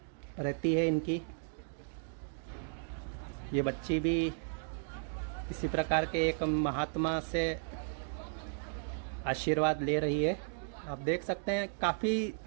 रहती है इनकी। ये बच्ची भी इसी प्रकार के एक महात्मा से आशीर्वाद ले रही है। आप देख सकते हैं काफ़ी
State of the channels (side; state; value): left; silent; digital silence